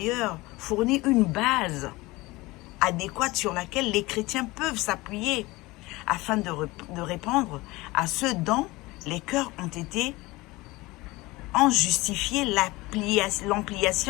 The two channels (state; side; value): quieter; right; 21.3 dB